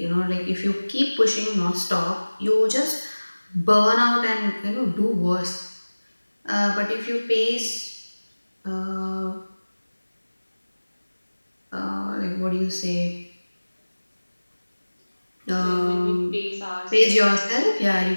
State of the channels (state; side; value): inverted; both; correlation -1.00